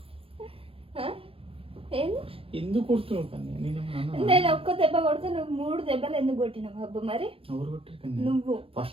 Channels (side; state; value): left; late; 0.27 ms